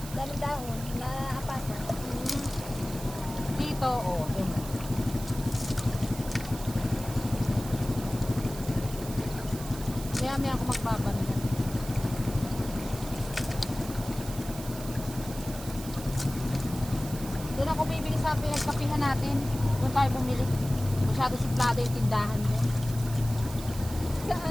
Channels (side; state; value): right; noise; hiss, 13 dB below the sound